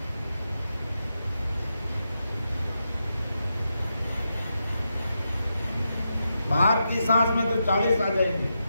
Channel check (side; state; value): both; inverted; correlation -0.86